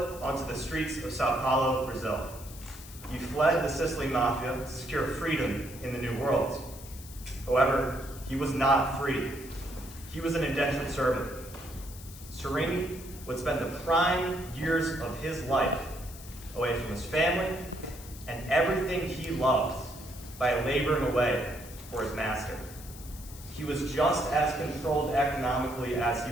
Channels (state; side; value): noise; left; hiss, 16 dB below the sound